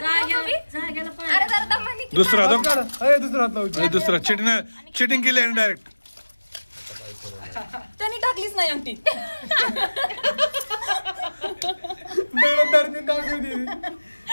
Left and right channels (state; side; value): inverted; both; correlation -1.00